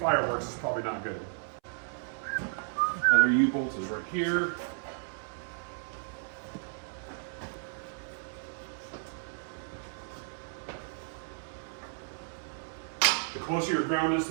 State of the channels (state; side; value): silent; left; 56 dB below the other